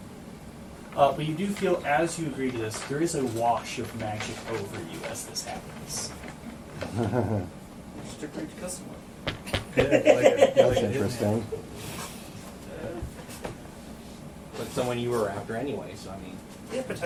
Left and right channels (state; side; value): identical; both; correlation 1.00